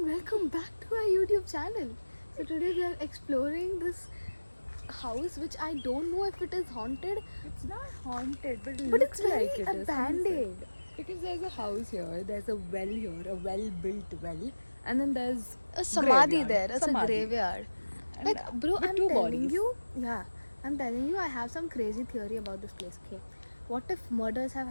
welcome back to our YouTube channel. So today we are exploring this house which I don't know if it is haunted. It's not haunted, but it But looks it's very like it is. abandoned. Because there's a house here, there's a well here, a well-built well, and then there's A samadhi graveyard. there. It's Samadhi. a graveyard. And, Like, bro, with I'm two telling bodies. you. Yeah, I'm telling you, I have some crazy theory about this place. Okay, what if murders have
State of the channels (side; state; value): both; inverted; correlation -1.00